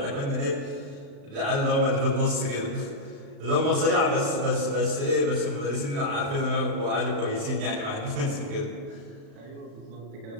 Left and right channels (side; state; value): left; late; 35 ms